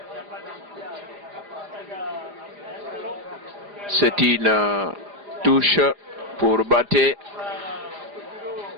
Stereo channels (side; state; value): left; late; 4.9 ms